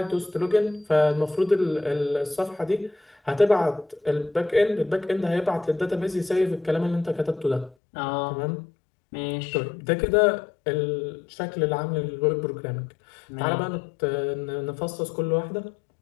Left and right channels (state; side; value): drops out; right; at 7.8 s